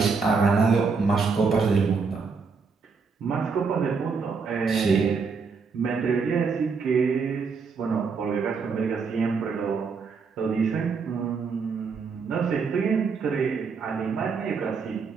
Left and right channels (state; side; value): quieter; left; 5.1 dB